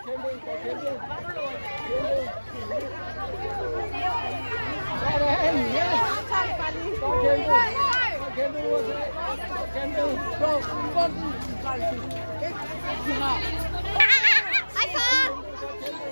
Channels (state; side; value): inverted; both; correlation -1.00